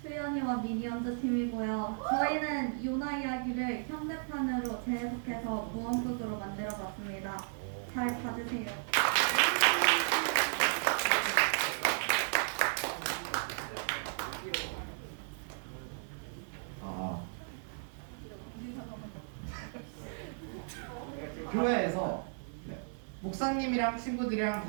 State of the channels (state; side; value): silent; left; 55 dB below the other